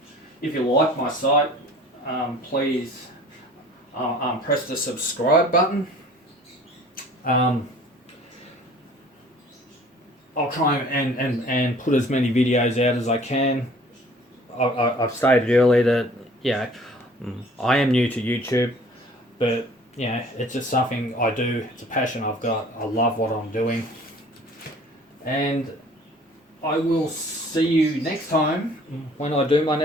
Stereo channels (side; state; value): both; normal; correlation 0.50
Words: If you like my site, please press the subscribe button. I'll try and put as many videos out as I can. I've stated earlier that, yeah, I am new to YouTube, but yeah, it's just something I do. It's a passion I've got. I love what I'm doing. And I will see you next time when I do my